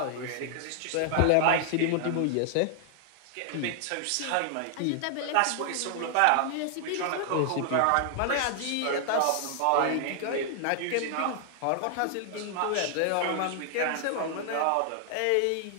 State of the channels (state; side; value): different; both; correlation 0.00